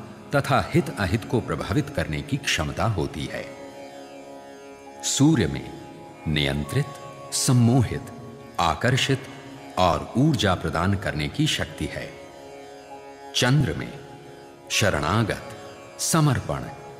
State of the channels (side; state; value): both; identical; correlation 1.00